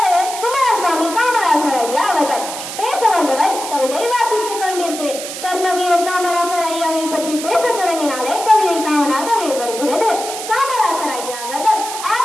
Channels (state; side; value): noise; right; hiss, 8 dB below the sound